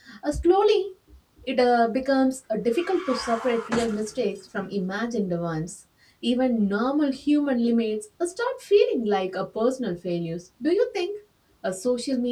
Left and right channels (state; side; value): identical; both; correlation 1.00